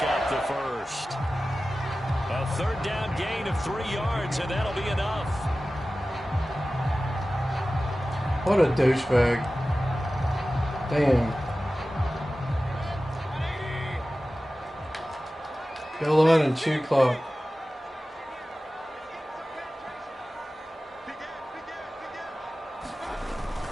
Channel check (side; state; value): both; normal; correlation 0.95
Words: up the 1st. A 3rd down gain of 3 yards, and that'll be enough. What a douchebag. Damn. Go line and chew clock.